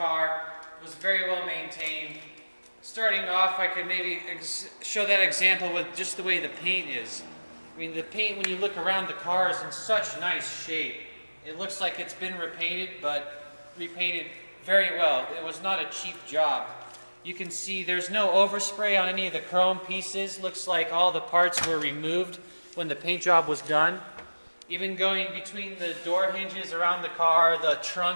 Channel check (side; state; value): both; inverted; correlation -1.00